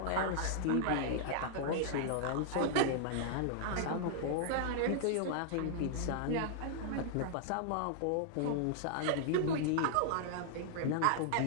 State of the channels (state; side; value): different; both; correlation -0.01